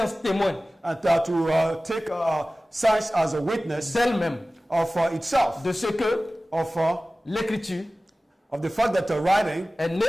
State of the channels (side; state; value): both; normal; correlation 0.97